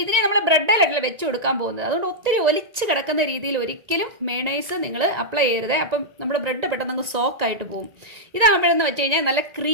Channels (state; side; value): late; left; 1.9 ms